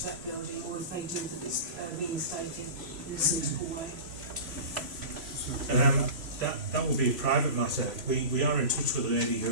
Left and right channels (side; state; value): left; late; 3.0 ms